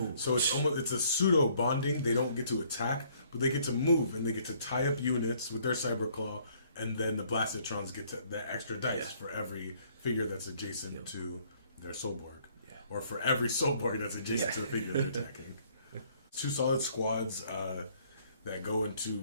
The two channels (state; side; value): inverted; both; correlation -0.63